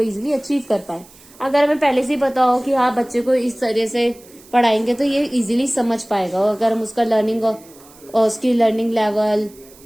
अचीव कर पाए। अगर हमें पहले से ही पता हो कि हाँ बच्चे को इस तरह से पढ़ाएंगे तो ये इजीली समझ पाएगा। अगर हम उसका लर्निंग और उसकी लर्निंग लेवल,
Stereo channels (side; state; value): right; noise; hiss, 24 dB below the sound